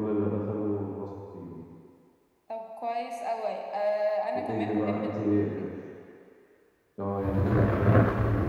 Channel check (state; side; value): identical; both; correlation 1.00